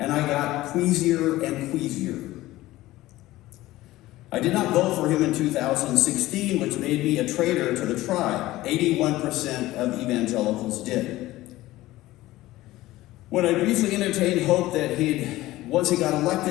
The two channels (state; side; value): quieter; right; 17.0 dB